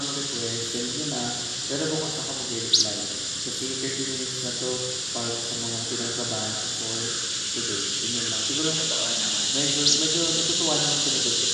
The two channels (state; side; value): identical; both; correlation 1.00